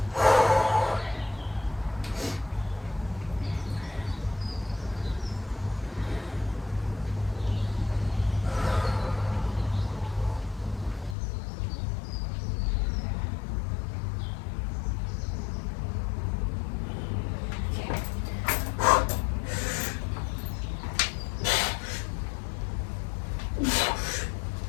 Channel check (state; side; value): drops out; right; at 11.2 s